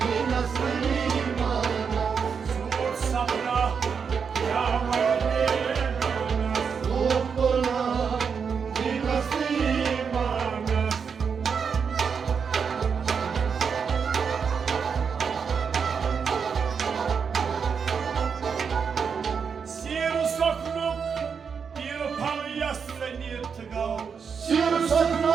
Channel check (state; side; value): quieter; left; 6.3 dB